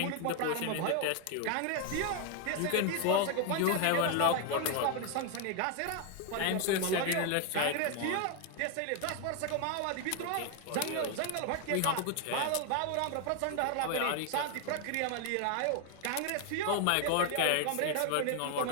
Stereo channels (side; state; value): both; different; correlation 0.01